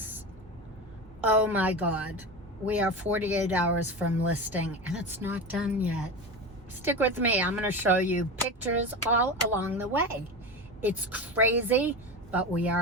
Oh my God. We are 48 hours from listing and it's not done yet. Stick with me. I'm going to show you pictures all along the way. It's crazy, but we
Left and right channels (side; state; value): both; normal; correlation 0.24